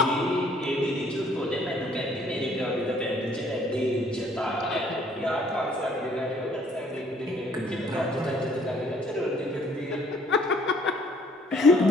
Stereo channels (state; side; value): normal; both; correlation 0.61